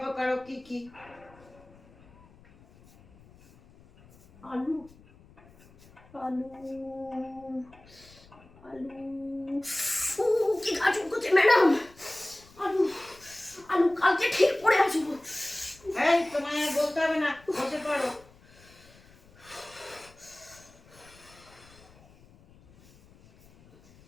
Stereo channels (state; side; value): noise; left; rumble, 25 dB below the sound